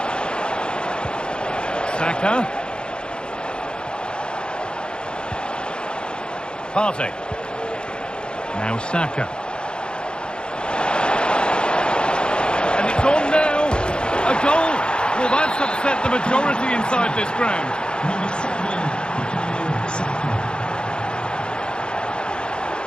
Saka. Partey. Now Saka. And it's on now. A goal. Well, that's upset the majority inside this ground. Number 7, Bukayo Saka.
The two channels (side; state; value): right; late; 0.051 ms